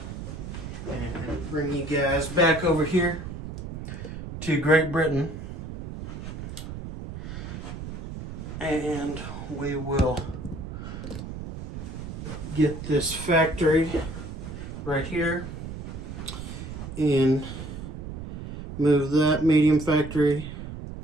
and bring you guys back over here to Great Britain, and we will get this factory right here and move that medium factory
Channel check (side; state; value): right; noise; rumble, 9 dB below the sound